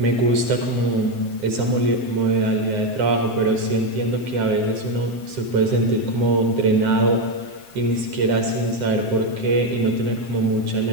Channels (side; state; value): left; late; 7.6 ms